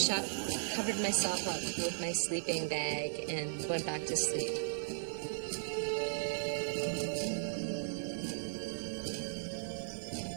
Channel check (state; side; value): silent; left; 53 dB below the other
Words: covered myself up with my sleeping bag and went back to sleep.